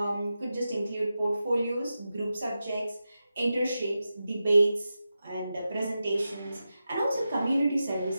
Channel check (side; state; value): both; inverted; correlation -0.91